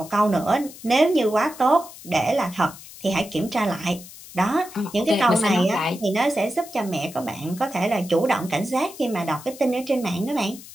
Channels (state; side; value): noise; left; hiss, 17 dB below the sound